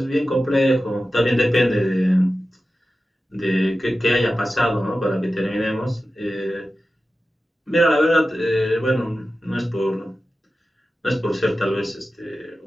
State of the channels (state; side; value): normal; both; correlation 0.93